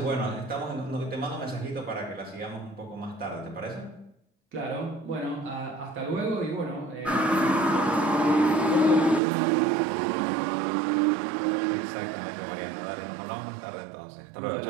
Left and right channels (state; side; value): drops out; left; at 9.2 s